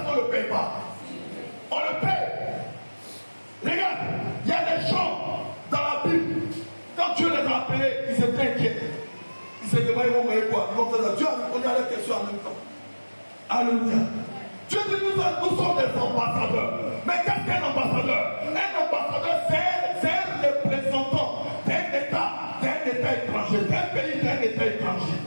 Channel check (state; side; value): inverted; both; correlation -1.00